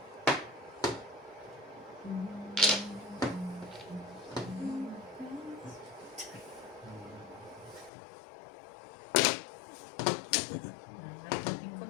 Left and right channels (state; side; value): drops out; right; at 7.9 s